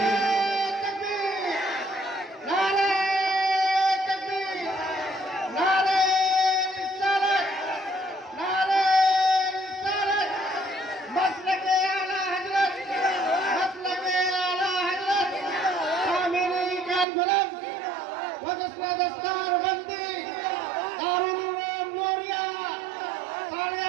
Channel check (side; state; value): left; drops out; at 17.1 s